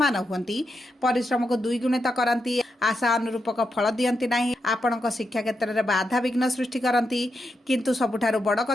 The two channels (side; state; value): both; normal; correlation 0.84